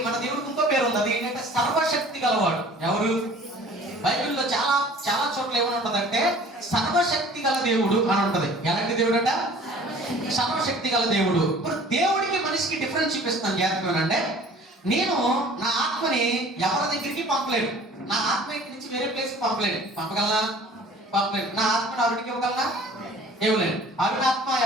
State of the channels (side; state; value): both; normal; correlation 0.48